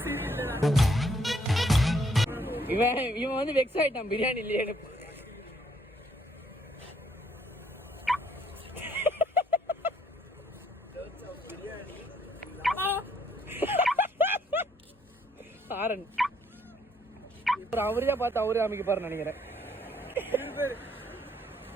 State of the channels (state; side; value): normal; both; correlation 0.68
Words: இவன் வந்து வெக்ஸ் ஆயிட்டான் பிரியாணி இல்லையே. ஆரன் அவரே பார்த்து அவரே அமைக்க பாரு நினைக்கிறேன்.